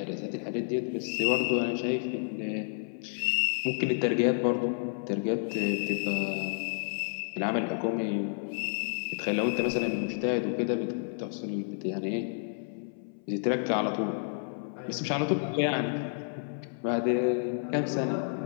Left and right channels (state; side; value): silent; right; 58 dB below the other